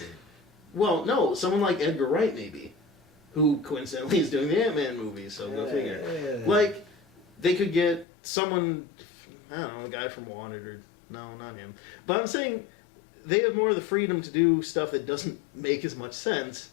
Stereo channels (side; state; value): right; drops out; at 8.1 s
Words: Well, no, someone like Edgar Wright maybe, who coincidentally is doing the Ant-Man movie, so go figure. Yeah. Like, they could get someone, I don't know, a guy from Wanted, or, no, not him. But I'm saying, they have more of the freedom to do stuff that doesn't make as much sense,